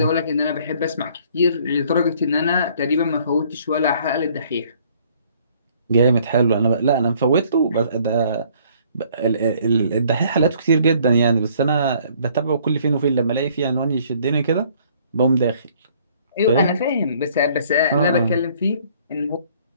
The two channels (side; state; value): both; inverted; correlation -0.60